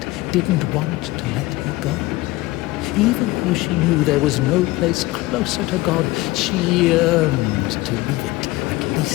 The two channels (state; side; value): quieter; right; 19.7 dB